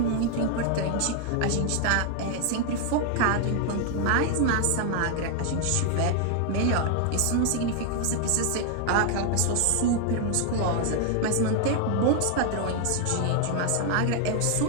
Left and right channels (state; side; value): different; both; correlation 0.00